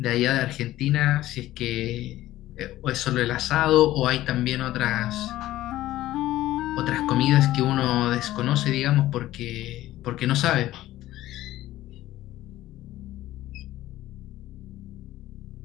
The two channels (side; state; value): right; quieter; 15.1 dB